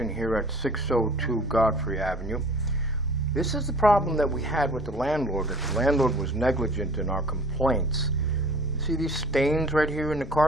here at 602 Godfrey Avenue. This is the problem that we had with the landlord, that the landlord was negligent in our complaints. You see these stains right here in the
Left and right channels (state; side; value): normal; both; correlation 0.48